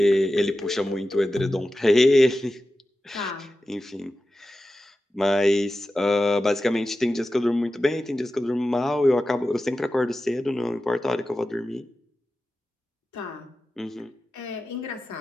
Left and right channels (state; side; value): normal; both; correlation 0.93